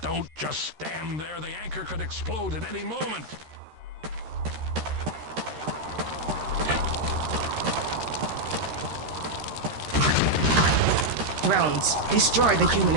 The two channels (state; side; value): late; left; 13 ms